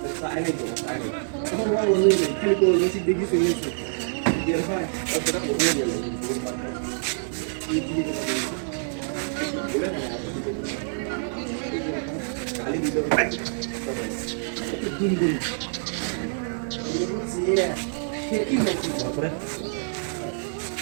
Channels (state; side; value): silent; left; 61 dB below the other